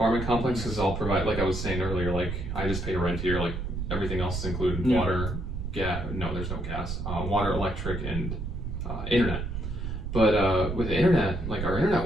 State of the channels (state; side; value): noise; right; rumble, 4 dB below the sound